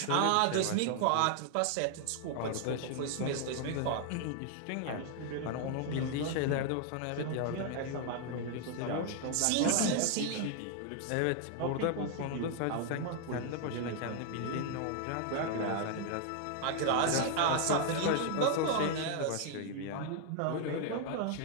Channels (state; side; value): different; both; correlation 0.00